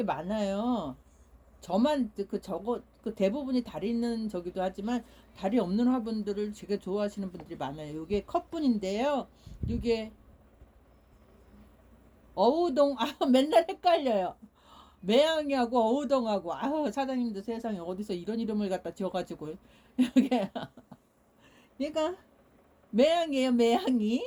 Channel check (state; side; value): identical; both; correlation 1.00